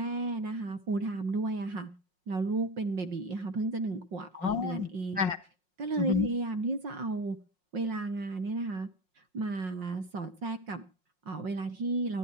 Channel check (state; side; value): late; left; 5.5 ms